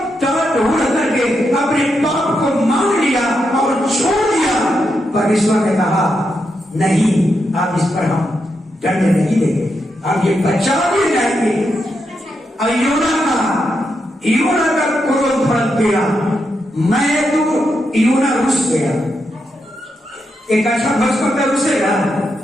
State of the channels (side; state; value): both; normal; correlation 0.84